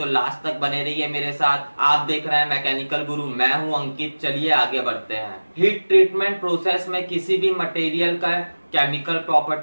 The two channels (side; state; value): both; inverted; correlation -1.00